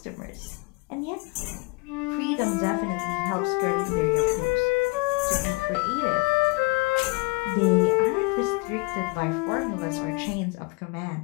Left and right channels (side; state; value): right; quieter; 27.6 dB